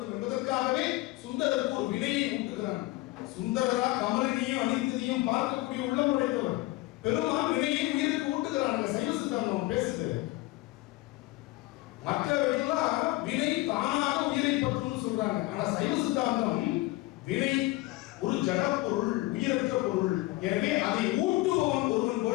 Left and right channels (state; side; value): quieter; right; 20.1 dB